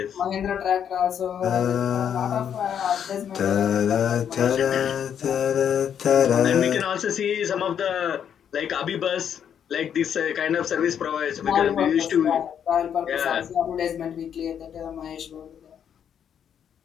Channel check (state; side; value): quieter; right; 8.6 dB